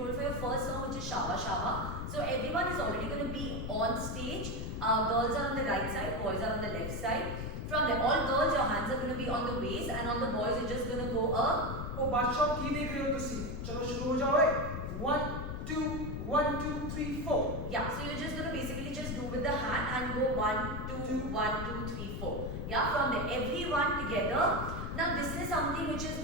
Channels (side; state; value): left; noise; rumble, 4 dB below the sound